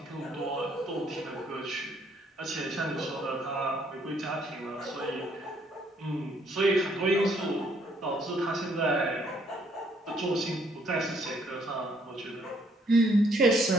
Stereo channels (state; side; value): normal; both; correlation 0.67